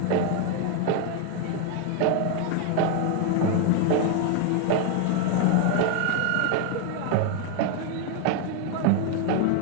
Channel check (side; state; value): both; different; correlation 0.01